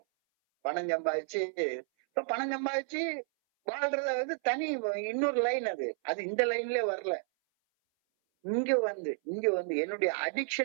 பணம் சம்பாதிச்சு வாழ்றத வந்து தனி இன்னொரு லைன். அது இந்த லைன்லயே வரல. இங்க வந்து என்னுடைய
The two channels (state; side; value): silent; left; 57 dB below the other